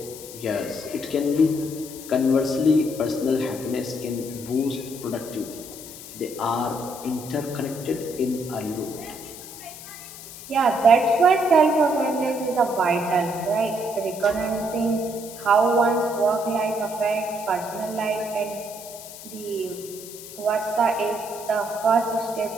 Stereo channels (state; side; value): noise; left; hiss, 14 dB below the sound